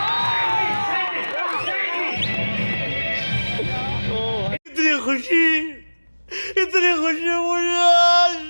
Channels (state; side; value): inverted; both; correlation -1.00